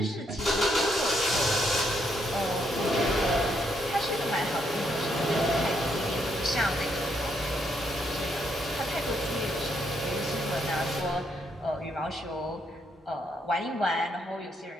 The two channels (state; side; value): normal; both; correlation 0.75